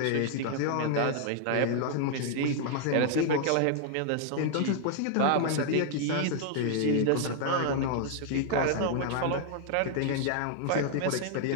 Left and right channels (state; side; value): different; both; correlation 0.00